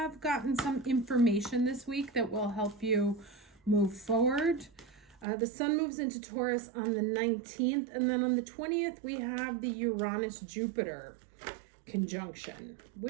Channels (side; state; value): left; drops out; at 5.2 s